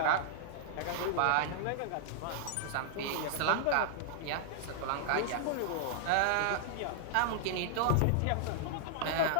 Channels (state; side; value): different; both; correlation -0.01